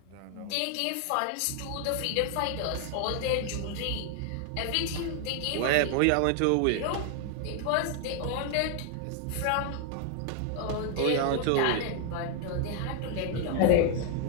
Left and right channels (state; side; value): different; both; correlation 0.00